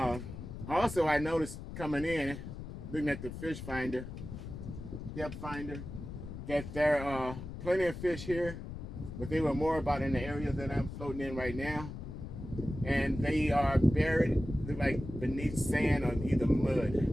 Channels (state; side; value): noise; left; rumble, 9 dB below the sound